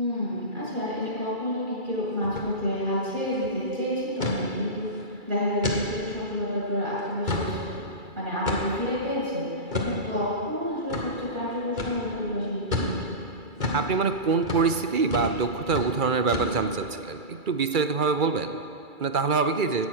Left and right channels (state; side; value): late; left; 2.3 ms